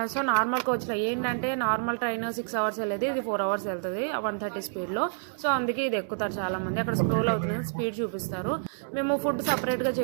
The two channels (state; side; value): silent; left; digital silence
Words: సో నార్మల్ కోచ్లో ఏంటంటే నార్మల్ ట్రైన్ 6 hours వెళ్ళేది, ఇది 4 hours వెళ్తుంది 130 స్పీడ్లో. సో అందుకే ఇది ఎక్కుతారు చాలా మంది. అక్కడ స్క్రోల్ అవుతుంది, స్పీడ్ చూపిస్తారు. మేము ఫుడ్ సపరేట్గా